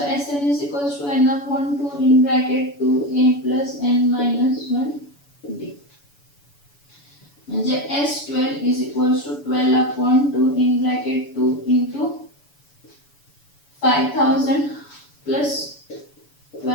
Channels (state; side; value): late; right; 7.0 ms